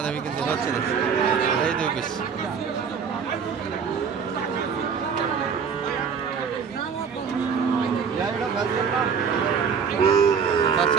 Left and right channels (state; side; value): quieter; left; 6.4 dB